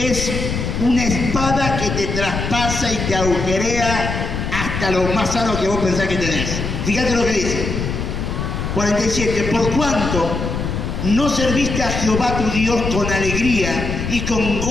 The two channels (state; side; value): noise; left; rumble, 3 dB below the sound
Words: una espada que te traspasa y te agujerea hasta lo más sano que vos pensás que tenés. Fíjate lo que dice. 47. Por cuanto no serviste a Jehová tu Dios con alegría y con